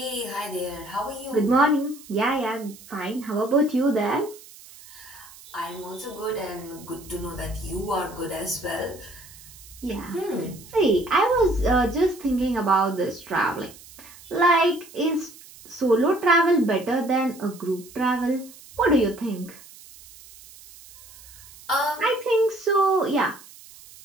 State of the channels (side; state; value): right; noise; hiss, 20 dB below the sound